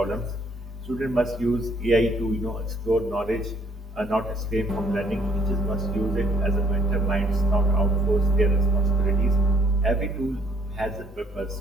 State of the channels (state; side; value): normal; both; correlation 0.64